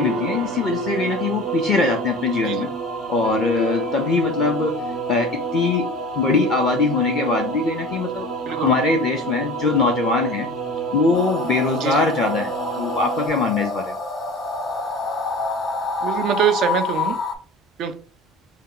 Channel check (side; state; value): both; normal; correlation 0.38